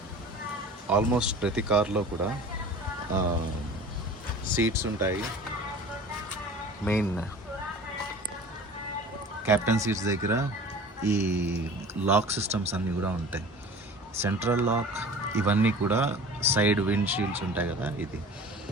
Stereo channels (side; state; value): both; normal; correlation 0.41